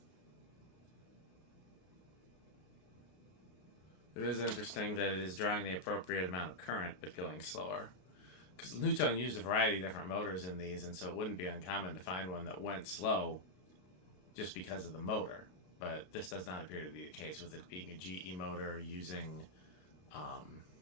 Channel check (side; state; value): right; late; 33 ms